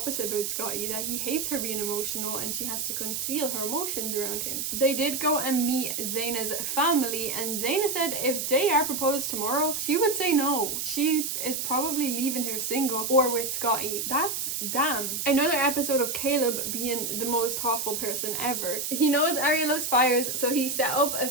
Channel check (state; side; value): noise; right; hiss, 2 dB below the sound